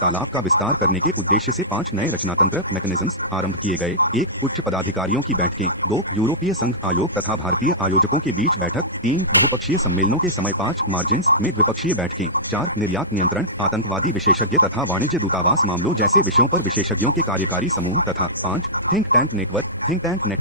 का विस्तार करने के उद्देश्य से 5 नए रचनातंत्र मैकेनिज्म्स आरंभ किए गए। 1 उच्च पदाधिकारियों की बैठकें, 2 यूरोपीय संघ आयोग तथा भारतीय आयोजकों के बीच बैठक, 3 बहुपक्षीय सम्मेलनों के समय 5 मार्जिन्स में द्विपक्षीय बैठकें, 4 निर्यात नियंत्रण, आतंकवादी विशेषज्ञ तथा वाणिज्य दूतावास मामलों जैसे विषयों पर विशेषज्ञों के कार्यकारी समूह तथा 5 थिंक टैंक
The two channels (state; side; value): normal; both; correlation -0.16